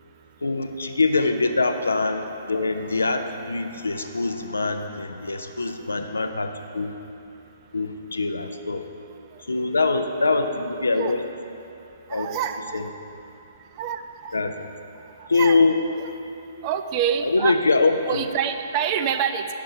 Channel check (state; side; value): inverted; both; correlation -0.74